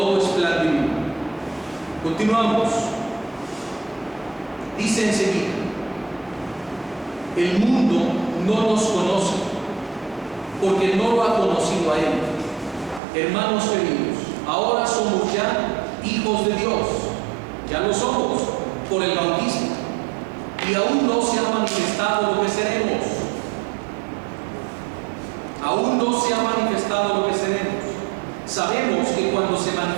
es plan divino. Continuamos. Dice enseguida: el mundo no nos conoce porque no lo ha conocido a Él. Hermanos queridos, ahora somos ya hijos de Dios. Ya lo somos por el bautismo. Y aún no se ha manifestado lo que seremos. Aún no se ha manifestado lo que seremos. Sabemos que cuando se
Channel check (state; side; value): drops out; left; at 13.0 s